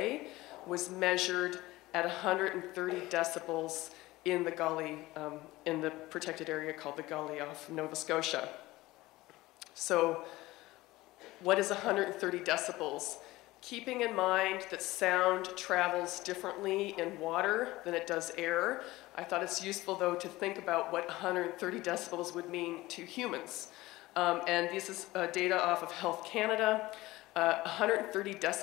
was measured at 130 decibels in the gully, in the protected area called the Gully off Nova Scotia. So what is 130 decibels? Keeping in mind that sound travels differently in water than it does air, I thought it's useful, though, to think about what 130 decibels would mean to humans. And this is data off of Health Canada. 130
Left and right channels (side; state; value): right; quieter; 18.7 dB